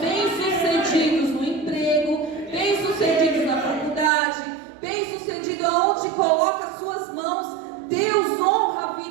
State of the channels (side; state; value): left; drops out; at 4.1 s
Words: no emprego, bem-sucedidos na faculdade, bem-sucedidos aonde coloca as suas mãos. Deus honra a